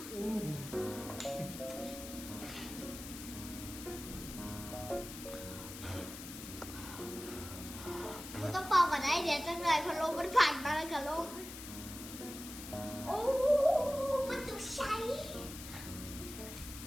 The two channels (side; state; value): left; noise; hiss, 11 dB below the sound